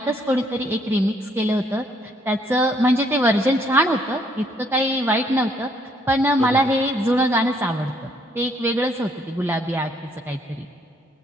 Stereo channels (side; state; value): both; normal; correlation 0.68